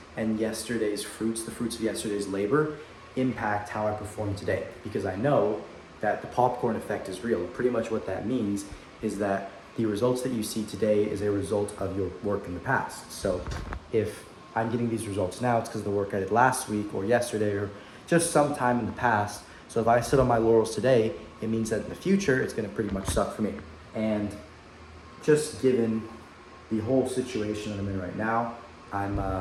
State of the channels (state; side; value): identical; both; correlation 1.00